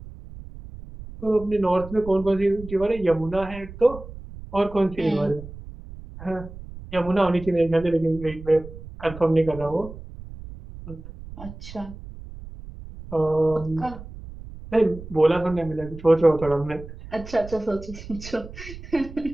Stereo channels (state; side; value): noise; right; rumble, 14 dB below the sound